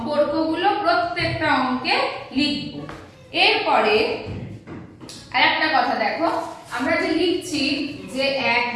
প্রত্যেকটা অঙ্কে লিখব। এরপরে আরেকটা কথা দেখো, আমরা যে লিখছি যে 1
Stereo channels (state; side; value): identical; both; correlation 1.00